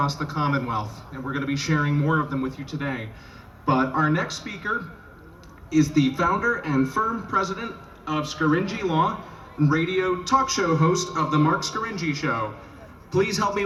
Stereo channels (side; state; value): both; identical; correlation 1.00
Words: the Commonwealth, and we're going to be sharing more of them with you today. But our next speaker is the founder and firm president of Scaringi Law and radio talk show host of The Mark Scaringi Show. Please help me